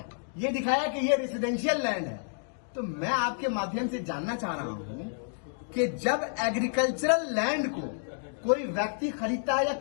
ये दिखाया कि ये रेसिडेंशियल लैंड है। तो मैं आपके माध्यम से जानना चाह रहा हूं कि जब एग्रीकल्चरल लैंड को कोई व्यक्ति खरीदता है या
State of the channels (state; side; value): silent; right; digital silence